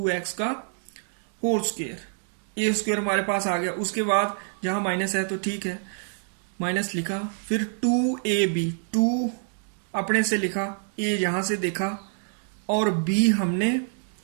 का होल स्क्वायर। a² हमारे पास आ गया। उसके बाद जहां माइनस है तो ठीक है, माइनस लिखा। फिर 2ab, 2 अपने से लिखा, a यहां से देखा और b हमने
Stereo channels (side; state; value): left; silent; 61 dB below the other